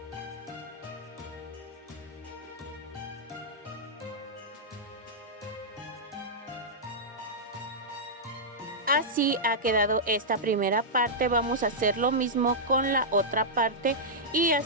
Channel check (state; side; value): normal; both; correlation -0.10